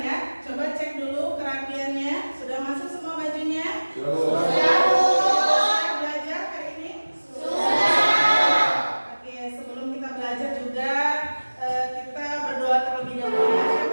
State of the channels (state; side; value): inverted; both; correlation -1.00